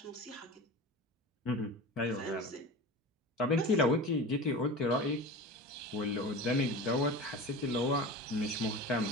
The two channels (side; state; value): both; normal; correlation 0.32